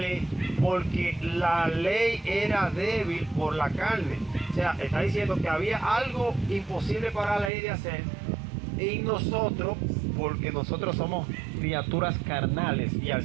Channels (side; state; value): left; drops out; at 7.5 s